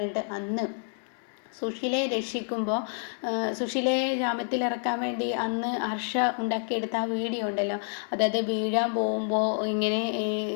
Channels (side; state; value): right; silent; digital silence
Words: അന്ന് സുശീലയെ രക്ഷിക്കുമ്പോൾ, സുശീലയെ ജാമ്യത്തിലിറക്കാൻ വേണ്ടി അന്ന് ഹർഷ ഉണ്ടാക്കിയെടുത്ത ആ വീഡിയോ ഉണ്ടല്ലോ, അതായത് വീഴാൻ പോകുമ്പോൾ ഇങ്ങനെ